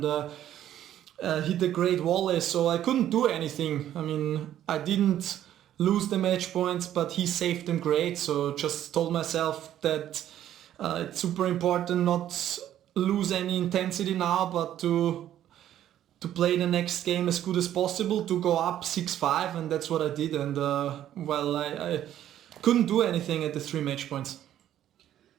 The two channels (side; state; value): left; quieter; 11.6 dB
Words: hit a great volley. So I couldn't do anything. I mean, I didn't lose the match points, but he saved them great. So just told myself that it's super important not lose any intensity now, but to play the next game as good as possible, to go up 6-5, and that's what I did. And well, I couldn't do anything at the 3 match points.